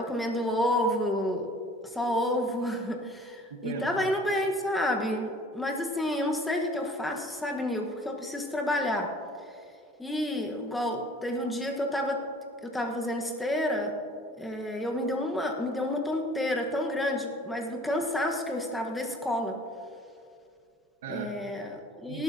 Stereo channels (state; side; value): normal; both; correlation 0.50